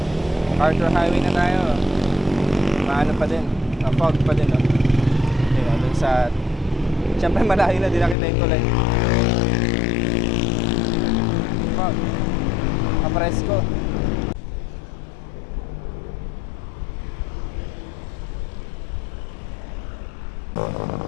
Arthur Highway na tayo. Maano pa din, fog pa din dun sa, siyempre malayo na, di nakita yung tulay. Fog. Apresko.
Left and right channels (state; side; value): drops out; right; at 8.2 s